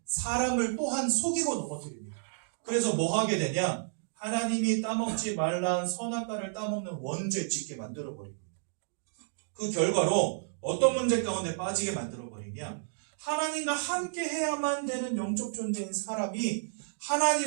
사람을 또한 속이고 넘어뜨립니다. 그래서 뭐 하게 되냐? 하나님이 따먹지 말라는 선악과를 따먹는 원죄 짓게 만들어버립니다. 그 결과로 어떤 문제 가운데 빠지게 만들어버리냐? 하나님과 함께 해야만 되는 영적 존재인 사람이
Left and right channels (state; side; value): silent; left; digital silence